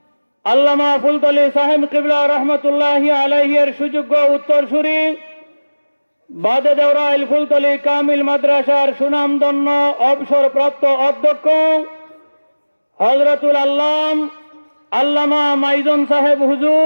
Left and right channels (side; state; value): both; inverted; correlation -1.00